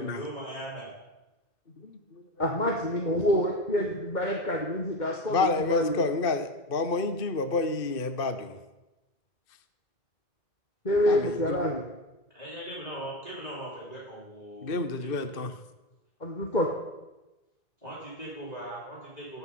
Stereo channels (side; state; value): right; late; 2.5 ms